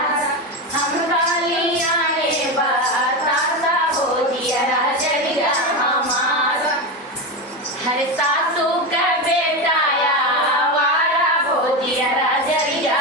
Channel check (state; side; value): normal; both; correlation 0.17